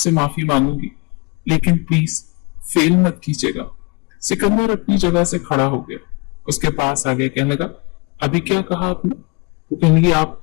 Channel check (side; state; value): right; quieter; 29.3 dB